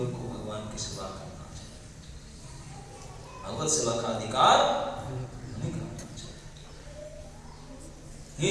को भगवान की सेवा करना चाहिए। भगवत सेवा का अधिकार नहीं करना चाहिए। ये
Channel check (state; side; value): identical; both; correlation 1.00